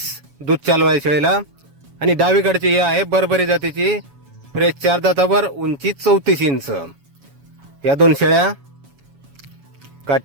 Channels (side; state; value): left; late; 7.2 ms